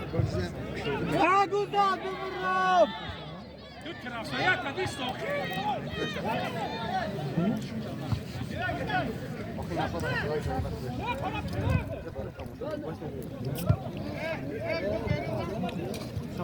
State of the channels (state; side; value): identical; both; correlation 1.00